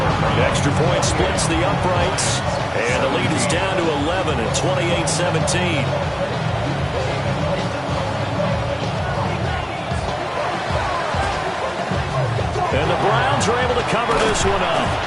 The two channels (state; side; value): identical; both; correlation 1.00